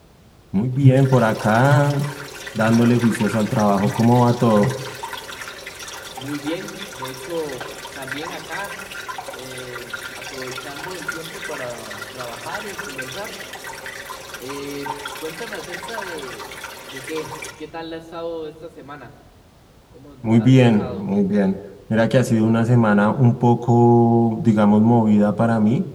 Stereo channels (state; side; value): identical; both; correlation 1.00